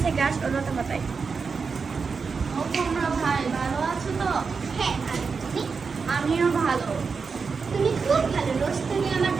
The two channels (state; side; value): quieter; left; 5.2 dB